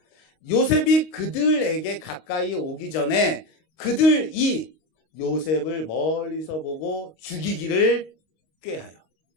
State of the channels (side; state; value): right; late; 25 ms